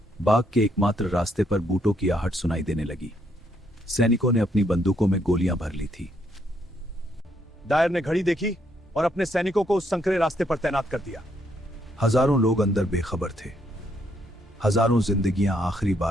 बाग के एकमात्र रास्ते पर बूटों की आहट सुनाई देने लगी। सैनिकों ने अपनी बंदूकों में गोलियां भर ली थी। डायर ने घड़ी देखी और अपने सैनिकों को उस संकरे रास्ते पर तैनात कर दिया। हजारों लोग अंदर बेखबर थे। हजारों जिंदगियां आखिरी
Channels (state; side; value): normal; both; correlation 0.73